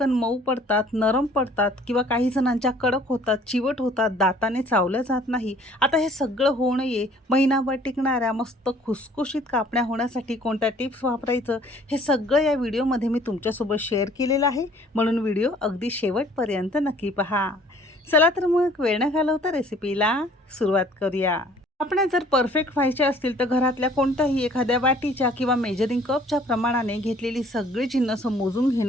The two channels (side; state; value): both; normal; correlation 0.55